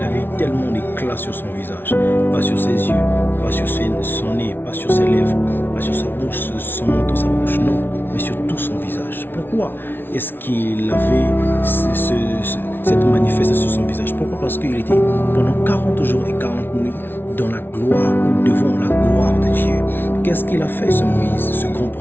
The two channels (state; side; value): late; right; 0.10 ms